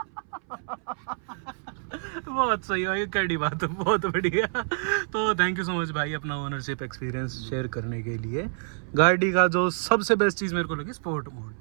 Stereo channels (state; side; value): silent; left; 60 dB below the other